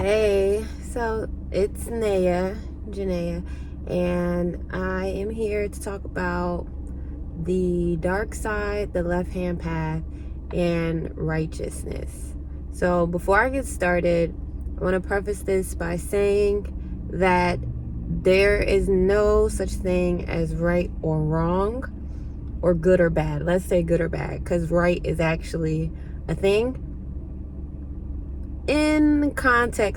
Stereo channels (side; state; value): both; identical; correlation 1.00